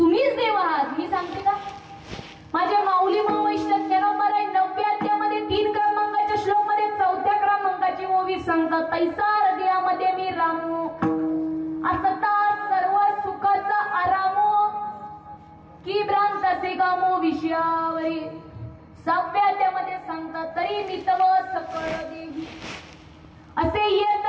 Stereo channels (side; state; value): both; identical; correlation 1.00